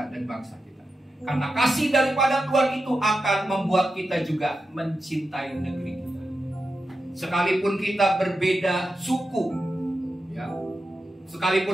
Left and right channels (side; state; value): both; normal; correlation 0.89